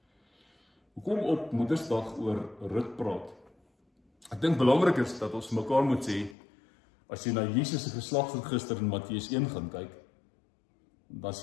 Hoekom op Moedersdag oor Rut praat? Ek dink belangrik is dat ons mekaar moet sê, as jy na Jesus se geslagsregister in Matteus 1 gaan kyk, dan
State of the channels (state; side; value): drops out; right; at 6.4 s